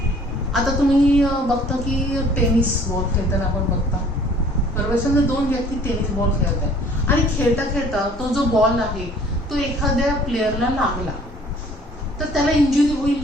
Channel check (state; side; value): normal; both; correlation 0.54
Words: आता तुम्ही बघता की टेनिस बॉल खेळताना आपण बघता, बरोबर. समजा दोन व्यक्ती टेनिस बॉल खेळत आहे आणि खेळता खेळता तो जो बॉल आहे तो एखाद्या प्लेअरला लागला तर त्याला इंजुरी